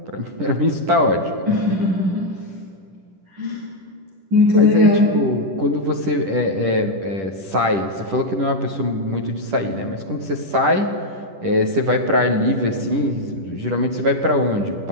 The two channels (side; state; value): left; late; 10 ms